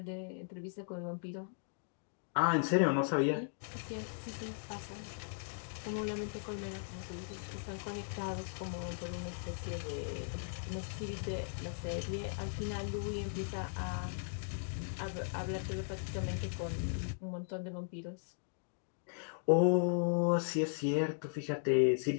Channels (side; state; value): right; silent; digital silence